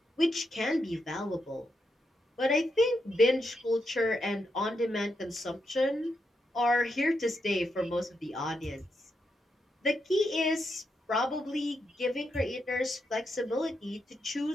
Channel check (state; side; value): normal; both; correlation 0.83